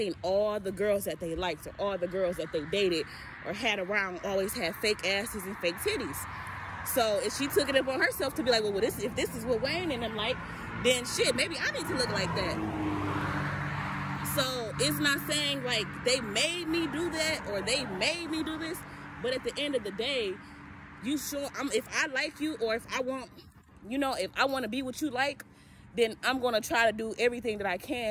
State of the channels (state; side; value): identical; both; correlation 1.00